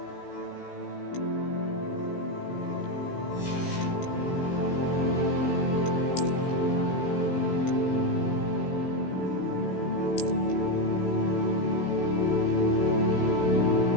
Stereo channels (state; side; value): late; right; 16 ms